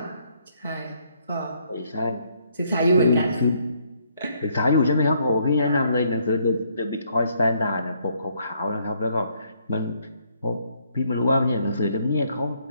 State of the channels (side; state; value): both; inverted; correlation -0.69